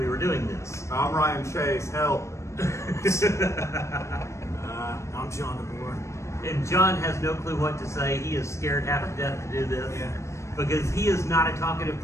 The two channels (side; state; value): right; late; 0.14 ms